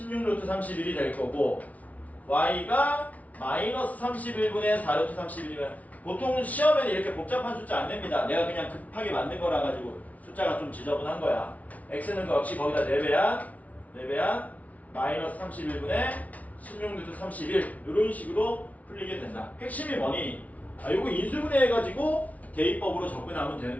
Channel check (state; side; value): late; right; 0.070 ms